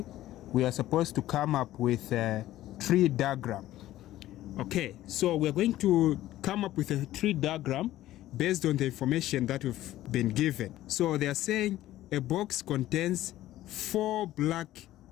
we are supposed to come up with a tree diagram. Okay, so we're going to come up with a tree diagram based on the information that we've been given. So they are saying a box contains 4 black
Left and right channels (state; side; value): quieter; right; 14.6 dB